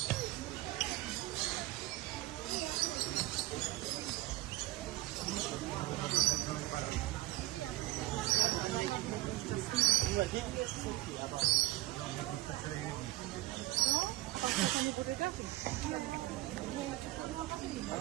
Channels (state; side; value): quieter; left; 18.3 dB